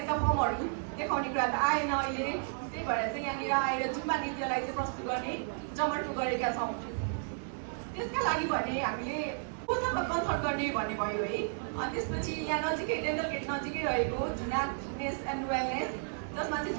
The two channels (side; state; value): left; silent; 56 dB below the other